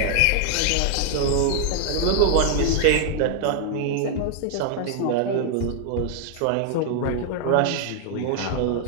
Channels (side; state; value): both; different; correlation 0.00